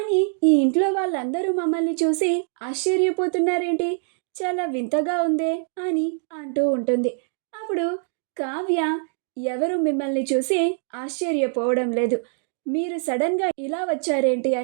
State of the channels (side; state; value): left; silent; 63 dB below the other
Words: ఈ ఇంట్లో వాళ్ళందరూ మమ్మల్ని చూసి ఆశ్చర్యపోతున్నారేంటి, చాలా వింతగా ఉందే అని అంటూ ఉంటుంది. అప్పుడు కావ్య, ఎవరు మిమ్మల్ని చూసి ఆశ్చర్యపోవడం లేదు, మీరు సడన్గా ఇలా వచ్చారేంటి